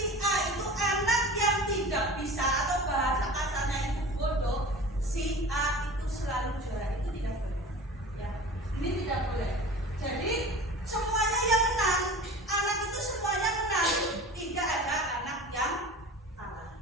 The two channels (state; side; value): normal; both; correlation 0.38